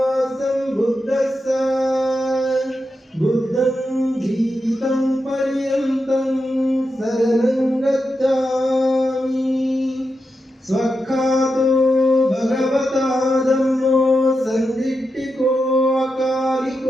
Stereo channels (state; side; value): normal; both; correlation 0.88